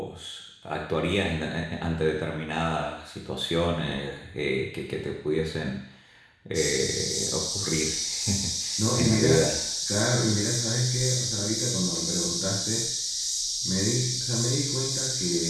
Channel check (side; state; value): both; identical; correlation 1.00